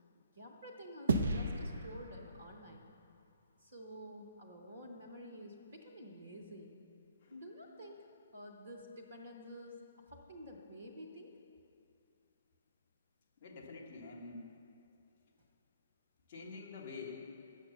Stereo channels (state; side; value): inverted; both; correlation -0.66